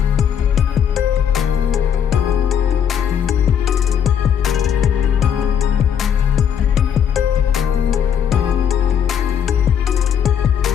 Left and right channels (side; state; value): right; quieter; 8.3 dB